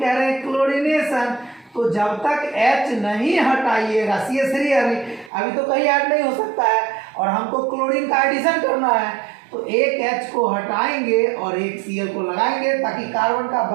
रहे हैं क्लोरीनेशन, तो जब तक H नहीं हटाइएगा, CH3 अभी तो कहीं ऐड नहीं हो सकता है और हमको क्लोरीन का एडिशन करना है, तो एक H को हटाएंगे और एक Cl को लगाएंगे ताकि कार्बन का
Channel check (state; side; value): drops out; left; at 5.3 s